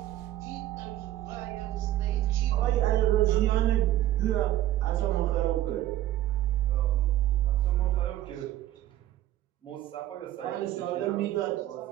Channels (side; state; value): left; quieter; 13.9 dB